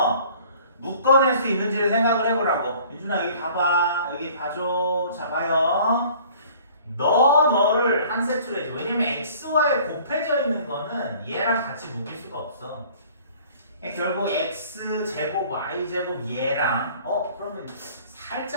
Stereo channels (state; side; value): inverted; both; correlation -0.51